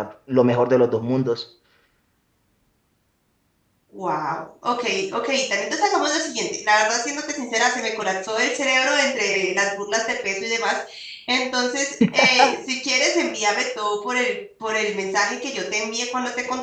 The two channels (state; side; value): identical; both; correlation 1.00